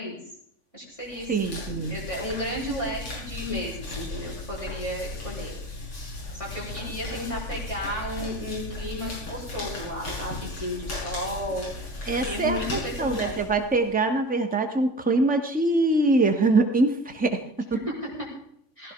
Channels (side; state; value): right; late; 3.5 ms